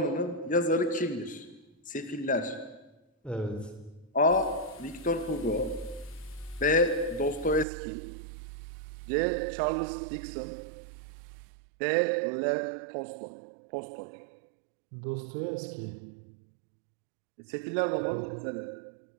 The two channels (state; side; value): drops out; left; at 7.7 s